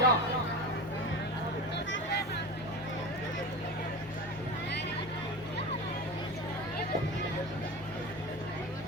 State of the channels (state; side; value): normal; both; correlation 0.28